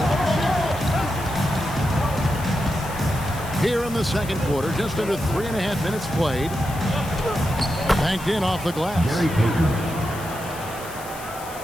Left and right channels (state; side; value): noise; left; hiss, 15 dB below the sound